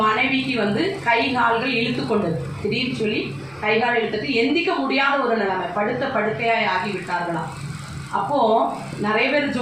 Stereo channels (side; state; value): left; noise; rumble, 29 dB below the sound